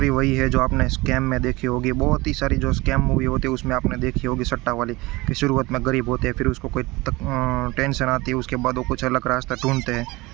वही है जो आपने स्कैम में देखी होगी। बहुत ही सारी जो स्कैम मूवी होती है उसमें आपने देखी होगी, सट्टा वाली, कि शुरुआत में गरीब होते हैं, फिर उसको कोई टेंशन आती है, उसके बाद वो कुछ अलग रास्ता ढूंढते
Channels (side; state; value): left; quieter; 22.1 dB